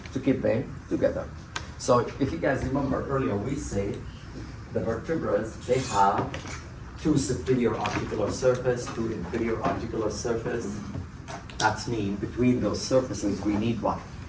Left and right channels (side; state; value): both; identical; correlation 1.00